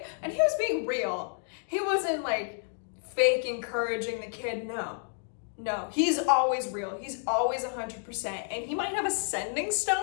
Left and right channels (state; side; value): silent; right; digital silence